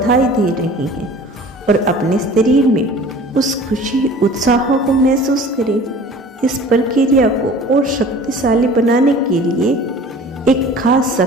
दे रहे हैं और अपने शरीर में उस खुशी उत्साह को महसूस करें। इस प्रक्रिया को और शक्तिशाली बनाने के लिए एक खास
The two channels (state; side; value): normal; both; correlation 0.44